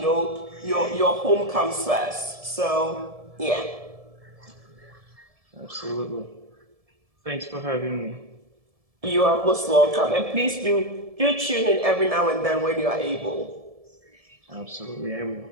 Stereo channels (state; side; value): late; left; 1.7 ms